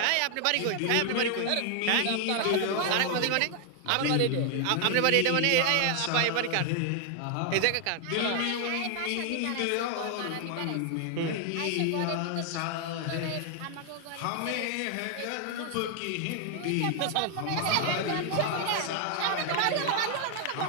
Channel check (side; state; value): both; different; correlation 0.00